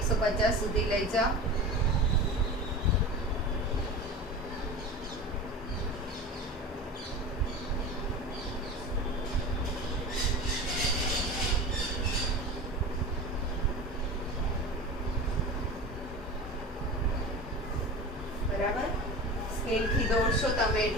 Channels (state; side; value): normal; both; correlation 0.31